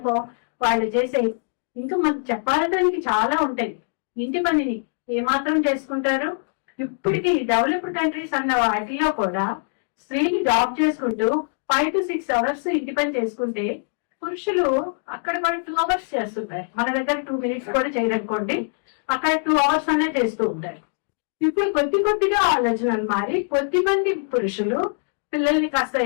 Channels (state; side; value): silent; right; digital silence